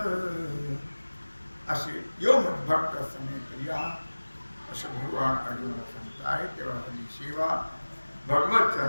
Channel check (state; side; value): inverted; both; correlation -1.00